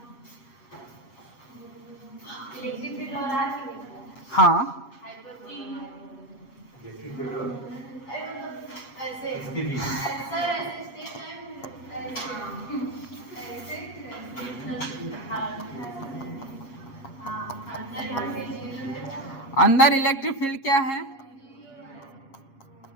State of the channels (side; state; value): right; late; 7.4 ms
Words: हाँ, अंदर इलेक्ट्रिक फील्ड क्या है?